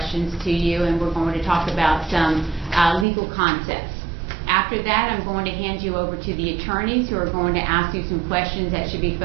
to you, and we're going to talk about some legal concepts. After that, I'm going to hand you over to the attorneys who are going to ask you some questions that should be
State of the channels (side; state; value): left; drops out; at 3.1 s